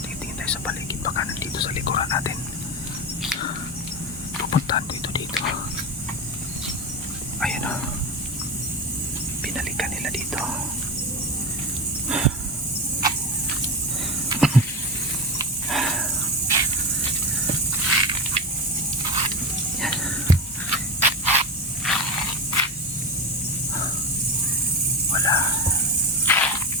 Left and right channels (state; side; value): normal; both; correlation 0.22